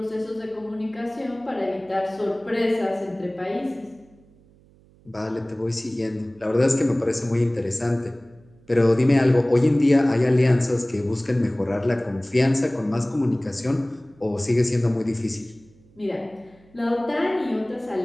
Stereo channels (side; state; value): right; noise; hum, 29 dB below the sound